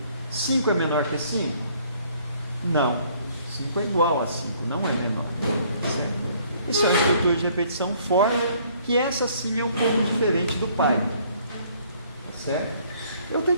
5 é menor que 5? Não. 5 é igual a 5, não é menor. Certo? Isso é uma estrutura de repetição for, que essa sim é um pouco diferente do Python. Tá certo? Eu até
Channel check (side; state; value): both; inverted; correlation -0.61